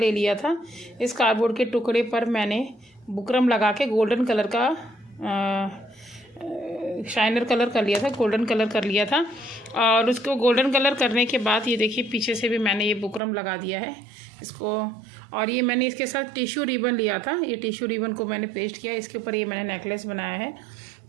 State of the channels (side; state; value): left; drops out; at 13.2 s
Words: लिया था। इस कार्डबोर्ड के टुकड़े पर मैंने बुकरम लगा के गोल्डन कलर का शाइनर कलर कर लिया था, गोल्डन कलर कर लिया था। और उसको गोल्डन कलर करने के बाद ये देखिए, पीछे से भी मैंने ये बुकरम लगा दिया है इसको। और ये मैंने इसके साथ टिश्यू रिबन लिया था, ये टिश्यू रिबन को मैंने पेस्ट किया, इसके ऊपर ये मैंने नेकलेस बनाया है।